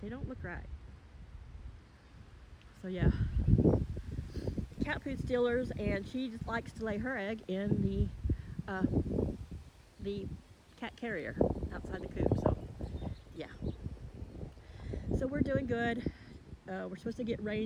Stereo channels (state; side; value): identical; both; correlation 1.00